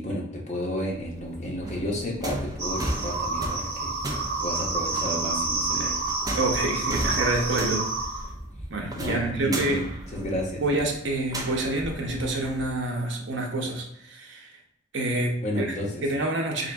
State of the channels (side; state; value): both; normal; correlation 0.28